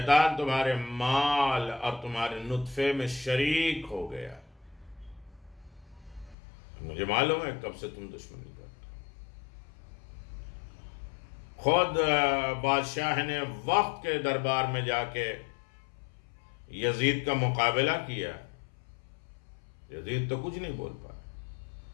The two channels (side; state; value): right; drops out; at 6.4 s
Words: تمہارے مال اور تمہارے نطفے میں شریک ہو گیا، مجھے معلوم ہے کب سے تم دشمنی کرتے ہو۔ خود بادشاہ نے وقت کے دربار میں جا کے یزید کا مقابلہ کیا، یزید تو کچھ نہیں بول پایا،